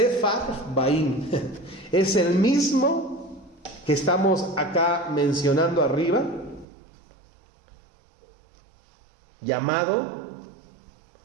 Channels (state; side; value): drops out; left; at 6.7 s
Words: es el mismo que estamos acá mencionando arriba, llamado